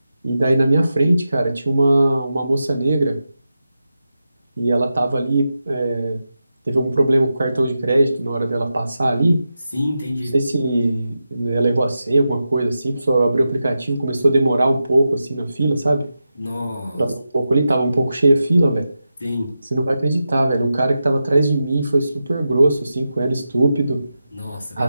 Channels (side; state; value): both; inverted; correlation -0.90